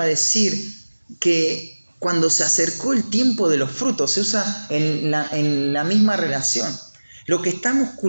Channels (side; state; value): both; inverted; correlation -1.00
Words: a decir que cuando se acercó el tiempo de los frutos, se usa en la misma relación. Lo que estamos